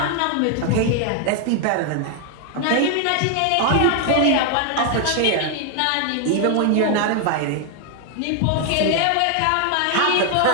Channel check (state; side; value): different; both; correlation 0.00